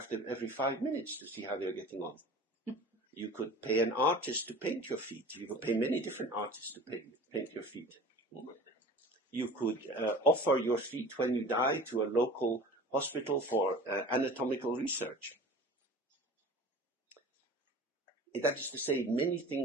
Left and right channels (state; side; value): normal; both; correlation 0.40